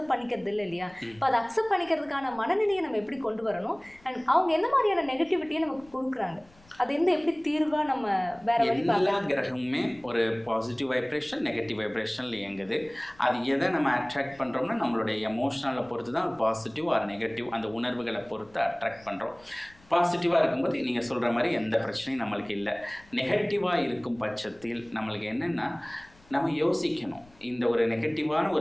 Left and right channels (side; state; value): left; noise; rumble, 28 dB below the sound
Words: பண்ணிக்கிறது இல்லை இல்லையா? இப்போ அதை அக்செப்ட் பண்ணிக்கிறதுக்கான மனநிலையை நம்ம எப்படி கொண்டு வரணும், அண்ட் அவங்க எந்த மாதிரியான நெகட்டிவிட்டியை நமக்கு கொடுக்குறாங்க, அது எந்த எப்படி தீர்வா நம்ம வேற வழி பார்க்கலாம்? எல்லா கிரகமுமே ஒரு பாசிட்டிவ் வைப்ரேஷன் நெகட்டிவ் வைப்ரேஷன்ல இயங்குது. அது எதை நம்ம அட்ராக்ட் பண்ணுறோம்னா நம்மளுடைய எமோஷனலை பொறுத்து தான் பாசிட்டிவ் ஆர் நெகட்டிவ் அந்த உணர்வுகளை பொறுத்து அட்ராக்ட் பண்ணுறோம். பாசிட்டிவாக இருக்கும்போது நீங்கள் சொல்கிற மாதிரி எந்த பிரச்சனையும் நம்மளுக்கு இல்லை. நெகட்டிவாக இருக்கும் பட்சத்தில் நம்மளுக்கு என்னென்னா நம்ம யோசிக்கணும். இந்த ஒரு நெகட்டிவான